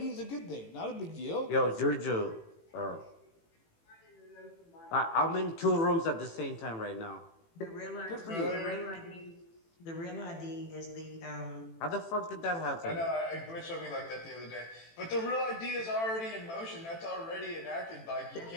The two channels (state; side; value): late; right; 18 ms